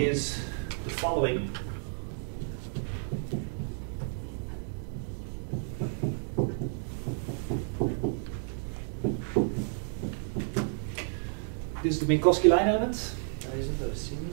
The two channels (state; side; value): silent; left; 57 dB below the other